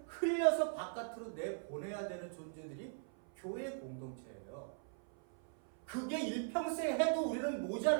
흘려서 바깥으로 내보내야 되는 존재들이 교회 공동체예요. 그게 일평생 해도 우리는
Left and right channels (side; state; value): left; silent; 51 dB below the other